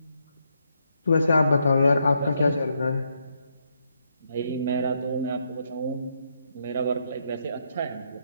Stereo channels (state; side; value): inverted; both; correlation -0.77